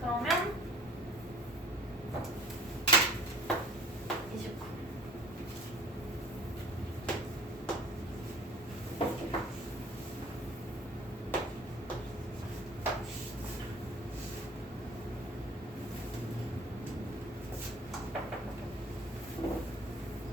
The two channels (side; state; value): both; normal; correlation 0.47